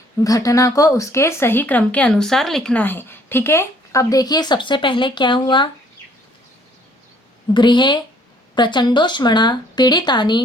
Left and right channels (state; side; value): normal; both; correlation 0.61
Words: घटना को उसके सही क्रम के अनुसार लिखना है। ठीक है, अब देखिए सबसे पहले क्या हुआ। गृहे प्रचंडोष्मणा